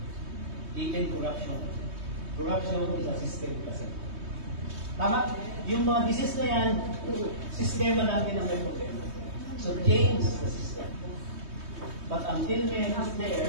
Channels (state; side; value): late; left; 3.2 ms